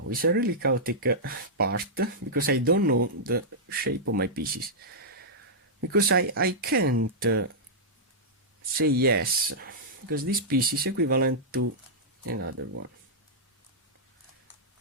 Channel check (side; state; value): both; normal; correlation -0.10